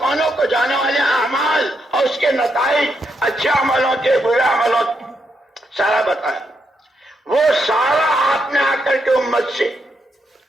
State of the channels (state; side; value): normal; both; correlation 0.80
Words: کو جانے والے اعمال اور اس کے نتائج اچھے عملوں کے برے عملوں کے سارا بتایا. وہ سارا آپ نے آ کر کے امت سے